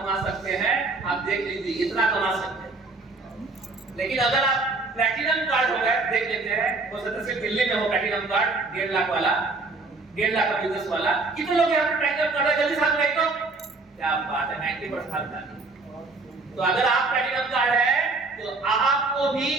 सकते हैं, आप देख लीजिए, इतना कमा सकते हैं। लेकिन अगर आप प्लैटिनम कार्ड हो गए, देख लेते हैं, हो सकता है सिर्फ दिल्ली में हो प्लैटिनम कार्ड 1.5 लाख वाला, 1.5 लाख का बिजनेस वाला। कितने लोग यहाँ पे प्लैटिनम कार्ड है? जल्दी साथ में, क्या बात है, 90% का। तो अगर आप प्लैटिनम कार्ड है तो आपको भी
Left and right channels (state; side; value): quieter; left; 3.6 dB